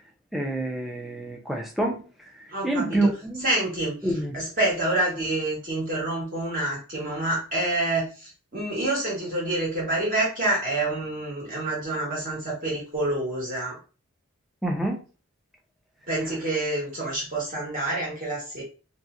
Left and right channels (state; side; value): normal; both; correlation 0.24